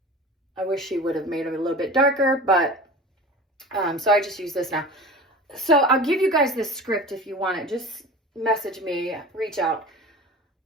I wish she would have made them a little bit darker, but so I just use this now. So I'll give you guys this script if you want it. Just message me, reach out.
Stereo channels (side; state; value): both; normal; correlation 0.36